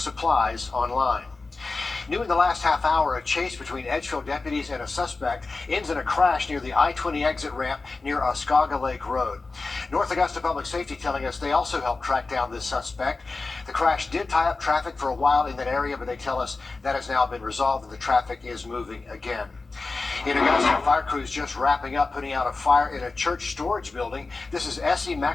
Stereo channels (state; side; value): quieter; right; 3.8 dB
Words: online. New in the last half hour, a chase between Edgefield deputies and a suspect ends in a crash near the I-20 exit ramp near Oscaga Lake Road. North Augusta Public Safety telling us they also helped track down this suspect. The crash did tie up traffic for a while in that area, but they tell us that has now been resolved and the traffic is moving again. In Augusta, fire crews just wrapping up putting out a fire in a church storage building. This is S.E.